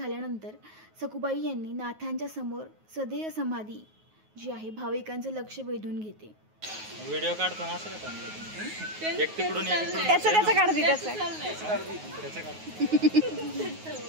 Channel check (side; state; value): left; late; 9.4 ms